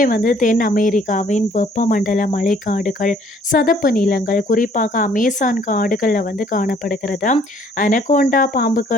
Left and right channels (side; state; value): both; normal; correlation 0.60